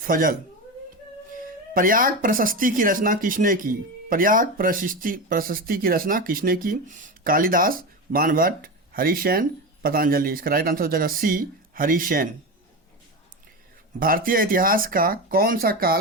प्रयाग प्रशस्ति की रचना किसने की? प्रयाग प्रशस्ति की रचना किसने की? कालिदास, बाणभट्ट, हरिसेन, पतंजलि। इसका राइट आंसर हो जाएगा सी हरिसेन। भारतीय इतिहास का कौन सा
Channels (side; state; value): both; normal; correlation 0.20